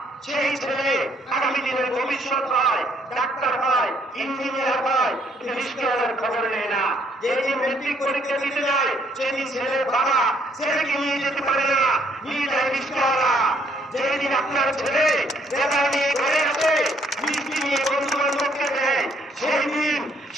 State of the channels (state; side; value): normal; both; correlation 0.67